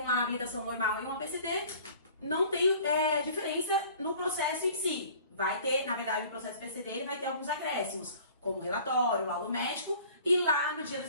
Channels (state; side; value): inverted; both; correlation -0.49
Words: habilitação normal e uma PCD, não tem diferença no processo em si. vai ter, na verdade, o processo PCD, ele vai ter alguns acréscimos, como relatório, laudo médico, e lá no dia do